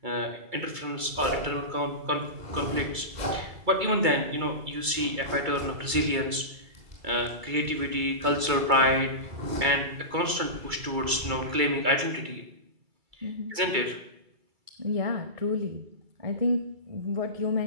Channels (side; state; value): left; late; 2.3 ms